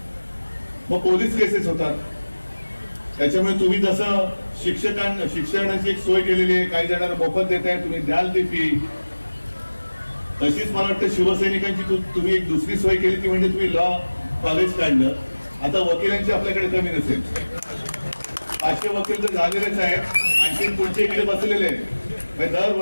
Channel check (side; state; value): both; inverted; correlation -1.00